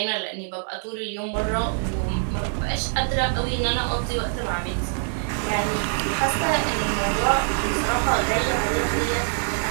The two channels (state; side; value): silent; left; digital silence